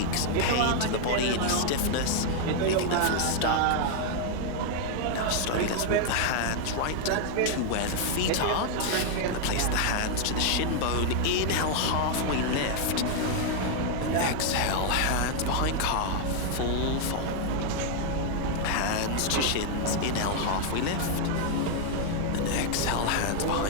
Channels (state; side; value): different; both; correlation 0.00